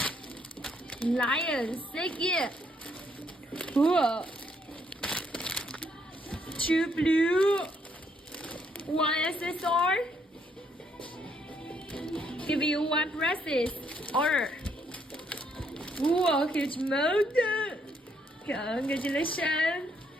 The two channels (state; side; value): normal; both; correlation 0.71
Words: Lion, so cute. Whoa. 2 blue. 1 accessory. Give you 1 bracelet. Order. Whoa, huge mountain. Congratulations.